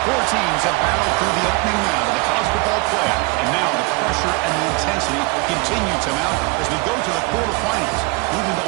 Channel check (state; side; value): quieter; left; 27.2 dB